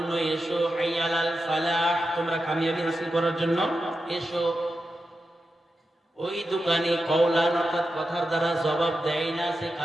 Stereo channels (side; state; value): both; normal; correlation 0.89